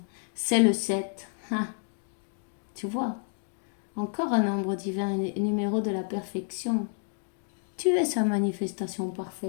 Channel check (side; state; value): right; silent; 58 dB below the other